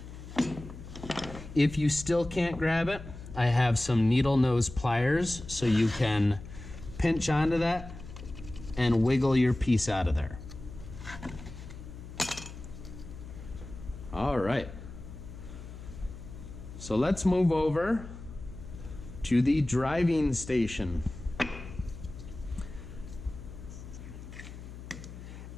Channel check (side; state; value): left; noise; hum, 13 dB below the sound